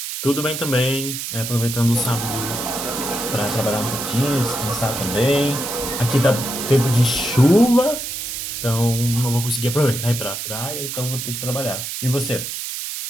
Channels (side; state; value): right; noise; hiss, 5 dB below the sound